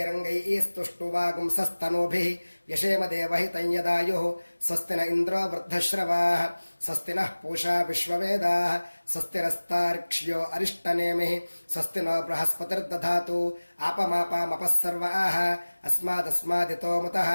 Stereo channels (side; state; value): both; inverted; correlation -1.00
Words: यशेम देवहितं यदायुः स्वस्ति न इन्द्रो वृद्धश्रवाः स्वस्ति नः पूषा विश्ववेदाः स्वस्ति नस्तार्क्ष्यो अरिष्टनेमिः स्वस्ति नो बृहस्पतिर्दधातु आपमापामपः सर्वाः अस्मादस्मादितो मुतः